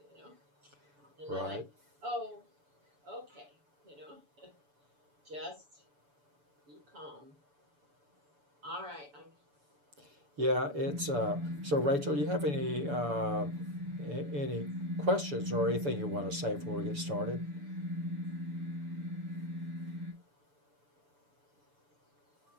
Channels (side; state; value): left; late; 6.9 ms